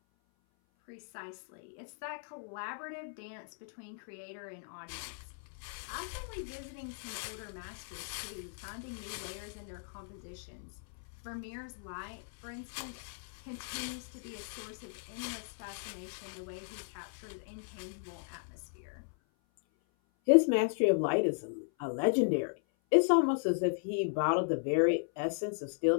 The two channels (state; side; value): silent; right; 54 dB below the other